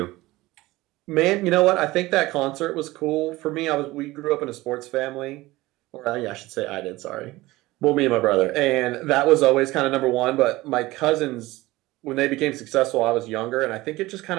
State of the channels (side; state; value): left; quieter; 19.1 dB